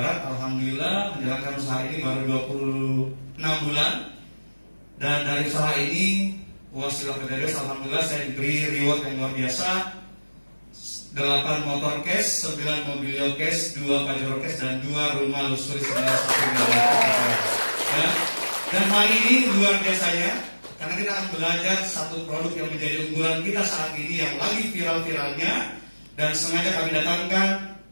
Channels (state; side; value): inverted; both; correlation -1.00